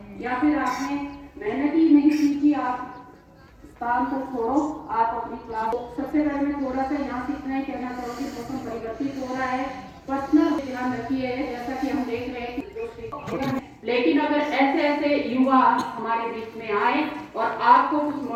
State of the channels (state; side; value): identical; both; correlation 1.00